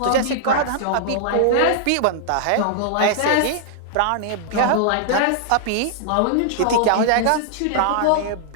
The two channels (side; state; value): both; different; correlation -0.01